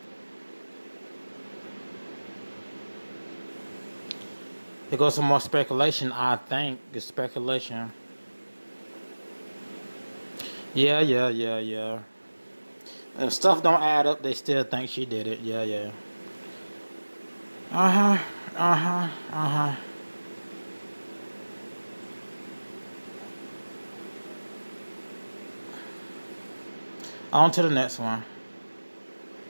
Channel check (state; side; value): inverted; both; correlation -1.00